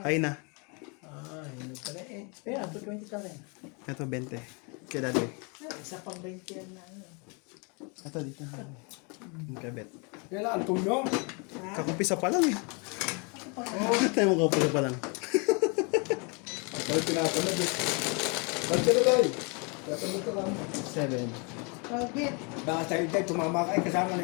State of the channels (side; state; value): right; quieter; 33.2 dB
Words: Ay na. Hindi pala eh. Kaya, 20 ka rin. Ito 20. Kaya dati. Isa pang 20 yan na. Ano. Ito dito. Yung kabet. Kailangan tulong. Kakumpisa pa lang eh. Tayo mo kakumpisa pa lang. Bakit tinatamad eh? Bakit ka na tayo? Tinatamad ka lang. 7. Robert, Baka tayo tayo tumama ka kasama